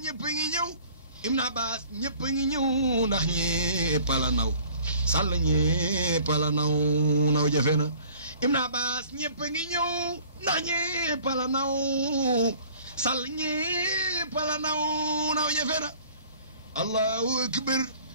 ñëpp a ngi ñëw Ibn Abbas ñëpp ngi ñëw ndax ñëpp la naw Sall ñëpp la naw jafe na Ibn Abbas ñëpp ngi ñëw ndax ñëpp la naw Sall ñëpp la naw jafe na Allahu akbar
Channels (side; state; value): both; inverted; correlation -0.52